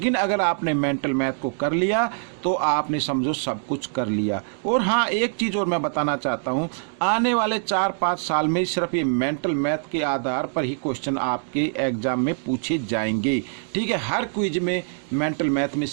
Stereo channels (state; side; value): silent; left; digital silence